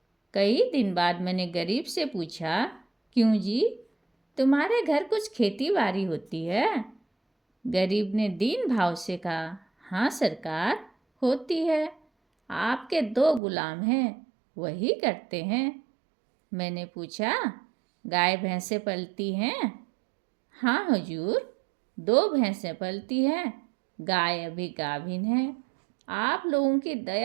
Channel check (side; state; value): left; drops out; at 13.4 s